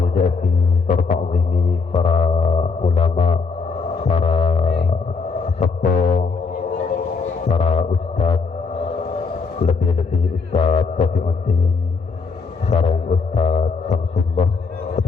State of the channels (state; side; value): quieter; right; 4.7 dB